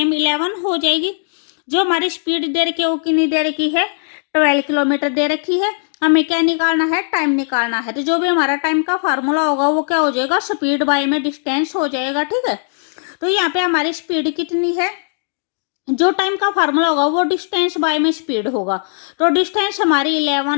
11 हो जाएगी। जो हमारी स्पीड दे रखी है वो कितनी दे रखी है? 12 किलोमीटर दे रखी है। हमें क्या निकालना है? टाइम निकालना है। तो जो भी हमारा टाइम का फार्मूला होगा वो क्या हो जाएगा? स्पीड बाय में डिस्टेंस हो जाएगा। ठीक है, तो यहाँ पे हमारी स्पीड कितनी है? जो टाइम का फार्मूला होगा वो डिस्टेंस बाय में स्पीड होगा। तो डिस्टेंस हमारी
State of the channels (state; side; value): silent; right; digital silence